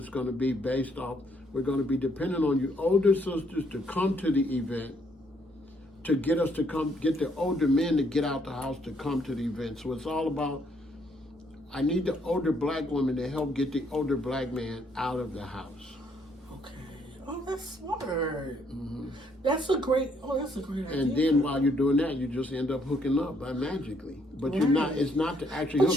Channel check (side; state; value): both; normal; correlation 0.70